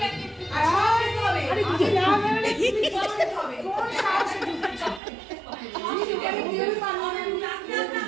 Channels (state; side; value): drops out; left; at 5.0 s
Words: আরে তুই না মানে কি হবে? কোন সাহসে